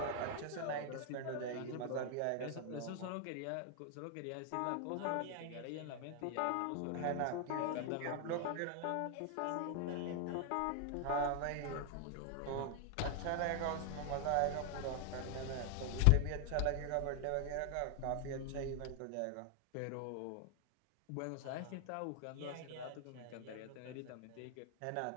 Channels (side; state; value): both; different; correlation 0.00